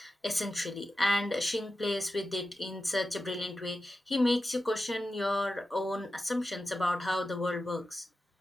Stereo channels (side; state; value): both; normal; correlation 0.92